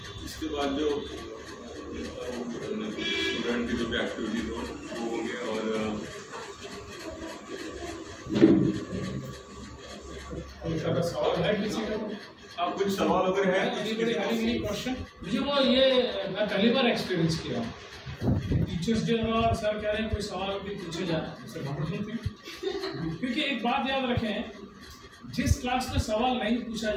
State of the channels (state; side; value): identical; both; correlation 1.00